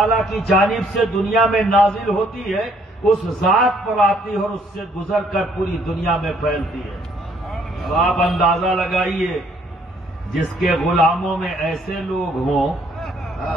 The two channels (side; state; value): both; normal; correlation 0.65